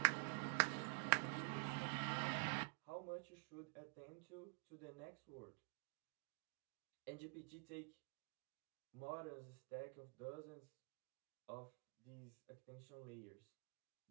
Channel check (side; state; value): left; quieter; 36.3 dB